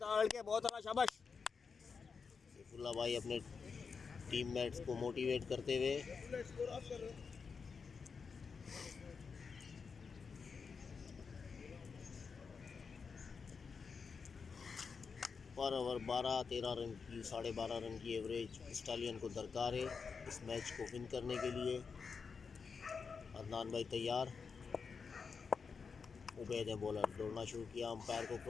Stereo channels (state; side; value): quieter; right; 5.4 dB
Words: बहुत आला, शाबाश। सैफुल्लाह भाई अपने टीममेट्स को मोटिवेट करते हुए पर ओवर 12-13 रन की 12.5 रन की एवरेज स्टालियन को दरकार है इस मैच को विन करने के लिए। अदनान भाई तैयार, उबैद ने बॉलर दौड़ना शुरू किया, अंपायर को